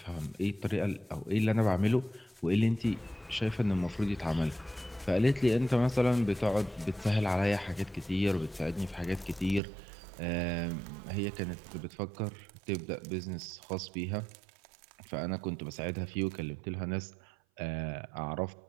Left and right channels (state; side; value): drops out; left; at 9.6 s